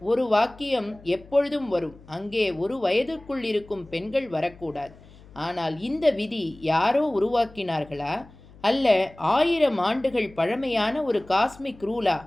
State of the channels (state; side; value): noise; left; hum, 23 dB below the sound